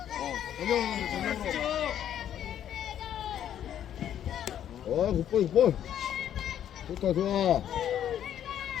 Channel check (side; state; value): right; quieter; 10.3 dB